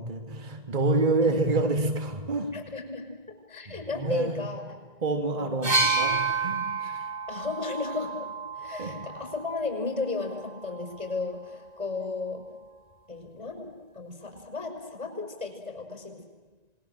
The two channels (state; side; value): late; left; 2.1 ms